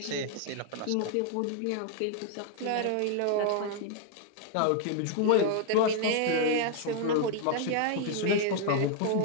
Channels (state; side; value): different; both; correlation -0.01